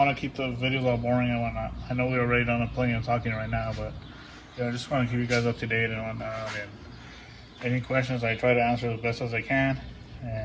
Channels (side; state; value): both; identical; correlation 1.00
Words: to keep the videos all boring and whatnot. I know we're already done plenty of talking right now, but I just want to keep you guys up to date and whatnot. And any questions, I try to answer as best as I can.